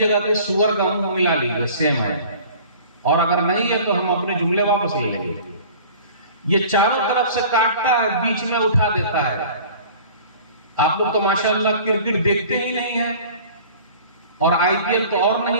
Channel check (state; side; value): inverted; both; correlation -0.45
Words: کے سور کا منہ ملا لیجئے، سیم ہے، اور اگر نہیں ہے تو ہم اپنے جملے واپس لے لیں گے۔ یہ چاروں طرف سے کاٹتا ہے، بیچ میں اٹھا دیتا ہے۔ آپ لوگ تو ماشاءاللہ کرکٹ دیکھتے ہی نہیں ہیں، اور آئی پی ایل تو اور